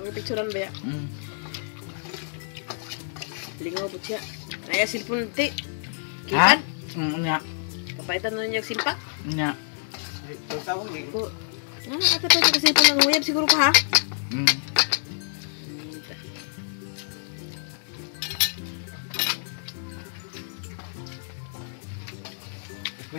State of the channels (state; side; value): silent; right; digital silence